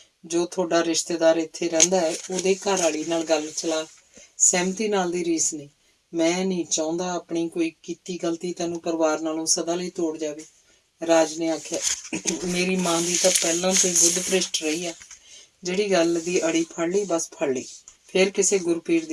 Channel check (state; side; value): identical; both; correlation 1.00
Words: ਜੋ ਤੁਹਾਡਾ ਰਿਸ਼ਤੇਦਾਰ ਇੱਥੇ ਰਹਿੰਦਾ ਹੈ ਉਹਦੇ ਘਰ ਵਾਲੀ ਨਾਲ ਗੱਲ ਚਲਾ। ਸਹਿਮਤੀ ਨਾਲ ਦੀ ਰੀਸ ਨਹੀਂ। ਮੈਂ ਨਹੀਂ ਚਾਹੁੰਦਾ ਆਪਣੀ ਕੋਈ ਕੀਤੀ ਗਲਤੀ ਤੈਨੂੰ ਪਰਿਵਾਰ ਨਾਲੋਂ ਸਦਾ ਲਈ ਤੋੜ ਜਾਵੇ। ਰਾਜ ਨੇ ਆਖਿਆ, ਮੇਰੀ ਮਾਂ ਦੀ ਤਾਂ ਪਹਿਲਾਂ ਤੋਂ ਹੀ ਬੁੱਧ ਭ੍ਰਿਸ਼ਟ ਰਹੀ ਆ। ਜਿਹੜੀ ਗੱਲ ਦੀ ਅੜੀ ਫੜ ਲਈ ਬਸ ਫੜ ਲਈ, ਫਿਰ ਕਿਸੇ ਗੁਰਪੀਰ